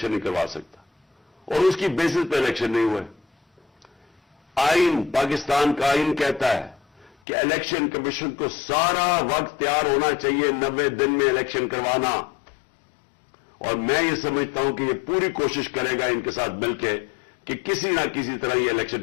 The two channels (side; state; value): right; drops out; at 7.2 s